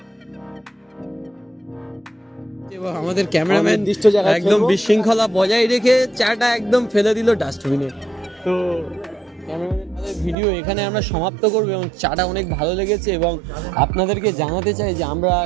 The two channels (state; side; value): drops out; left; at 10.4 s